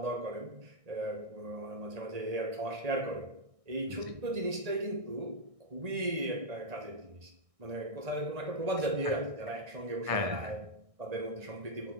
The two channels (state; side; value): late; left; 1.6 ms